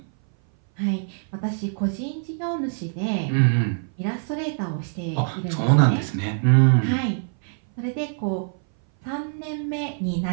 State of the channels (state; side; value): silent; left; 59 dB below the other